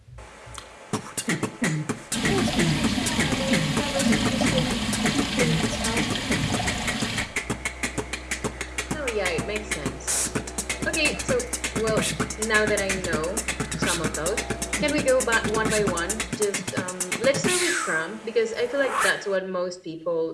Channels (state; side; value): identical; both; correlation 1.00